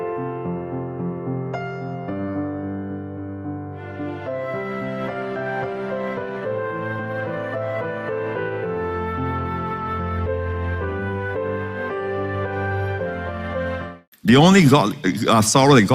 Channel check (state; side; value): identical; both; correlation 1.00